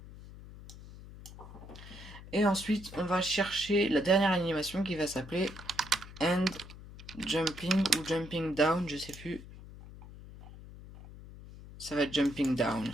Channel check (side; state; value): left; noise; hum, 16 dB below the sound